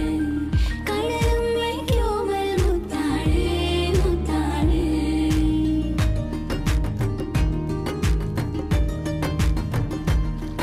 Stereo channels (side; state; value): both; identical; correlation 1.00